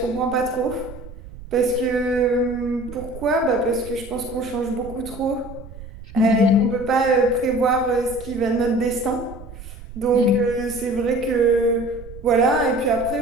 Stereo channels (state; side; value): noise; right; rumble, 15 dB below the sound